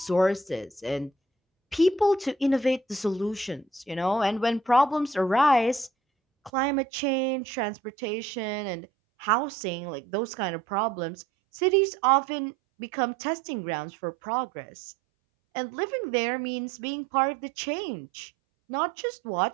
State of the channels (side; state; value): left; drops out; at 6.5 s